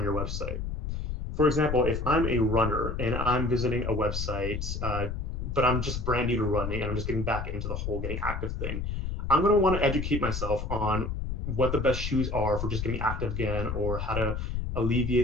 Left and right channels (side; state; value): left; noise; rumble, 3 dB below the sound